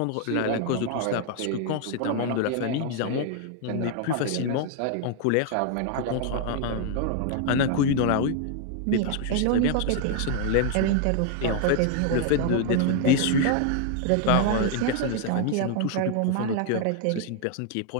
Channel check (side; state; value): both; different; correlation 0.00